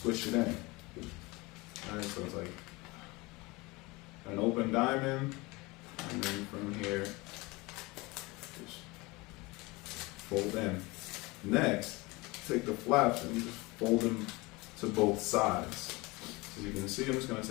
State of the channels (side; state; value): right; quieter; 23.7 dB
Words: it in. Alright, so it's like an open diamond, and then from here, just fold in. Next, take the flaps and just fold them to both sides. As you can see, I'm just going to